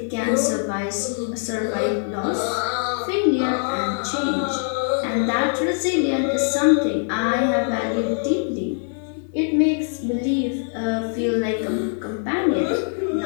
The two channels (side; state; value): right; silent; 64 dB below the other